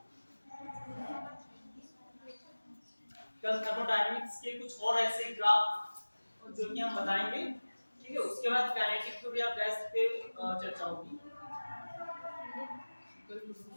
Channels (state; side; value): inverted; both; correlation -1.00